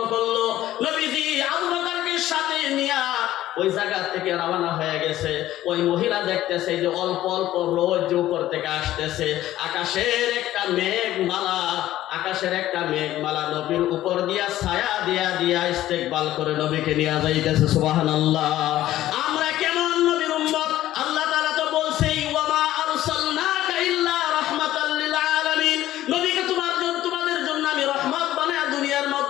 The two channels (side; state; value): right; quieter; 14.1 dB